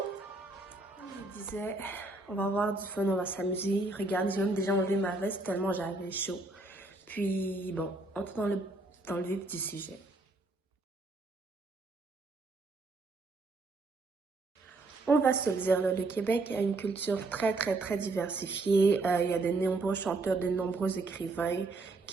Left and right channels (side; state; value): left; quieter; 3.2 dB